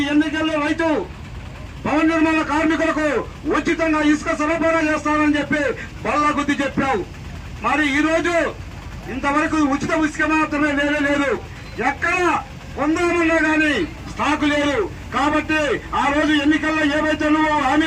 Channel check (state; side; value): identical; both; correlation 1.00